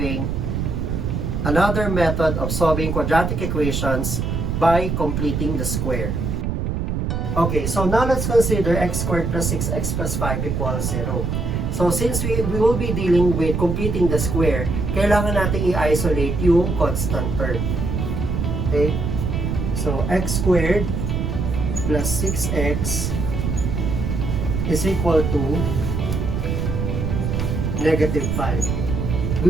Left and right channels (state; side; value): noise; right; rumble, 1 dB below the sound